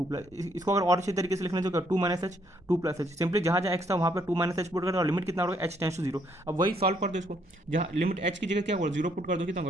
प्लस, इसको अगर और अच्छे तरीके से लिखना चाहिए 2 - h 2 + h, सिंपली जहाँ जहाँ x था वहाँ पर 2 - h पुट करो और लिमिट कितना होगा h टेंस टू 0। अब वही सॉल्व कर दो इसको, जहाँ लिमिट h की जगह क्या होगा 0 पुट कर दो, कितना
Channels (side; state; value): both; normal; correlation 0.70